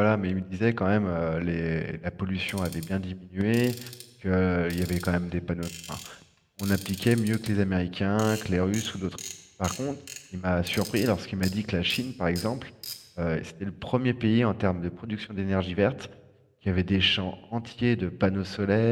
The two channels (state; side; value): identical; both; correlation 1.00